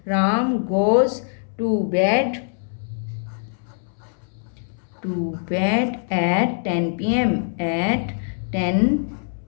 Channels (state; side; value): silent; right; 63 dB below the other